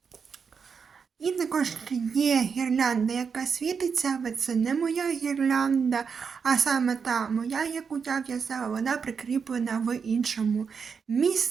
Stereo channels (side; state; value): left; quieter; 6.0 dB